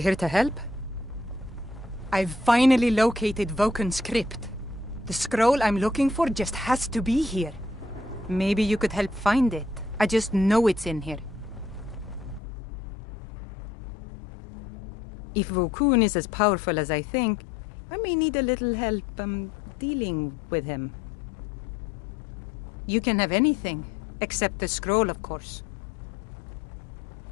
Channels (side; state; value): right; drops out; at 12.4 s